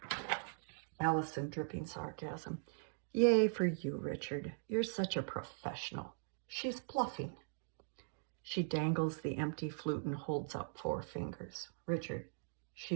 Allison, dripping sarcasm. Yay for you, Richard. You're such a professional. She's bluffing. She dangles the empty flute and holds up 4 fingers. Richard,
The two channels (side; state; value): left; silent; digital silence